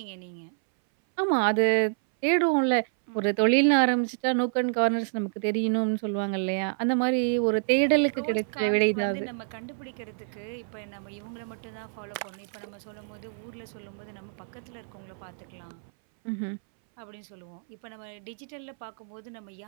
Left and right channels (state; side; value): silent; left; 59 dB below the other